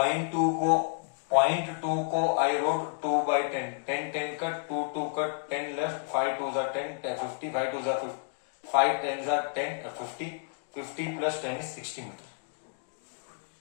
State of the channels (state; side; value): silent; right; digital silence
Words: को I wrote 2 by 10. 10 10 cut, 2 2 cut, 10 left, 5 2s are 10, 50, 5 2s are 50, 5 10s are 10, 50, 50 plus 10 is 60 meter.